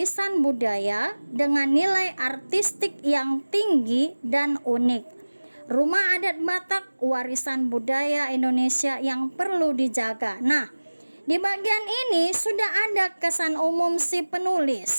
budaya dengan nilai artistik yang tinggi dan unik. Rumah adat Batak warisan budaya Indonesia yang perlu dijaga. Nah, di bagian ini sudah ada kesan umum si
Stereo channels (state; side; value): inverted; both; correlation -1.00